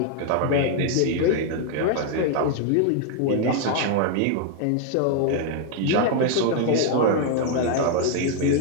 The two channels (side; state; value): both; different; correlation 0.00